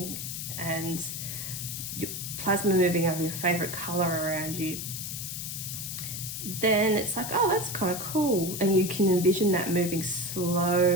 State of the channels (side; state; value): left; noise; hiss, 6 dB below the sound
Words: and plasma moving of your favorite color around you, then it's like, oh, that's kind of cool. And you can envision that moving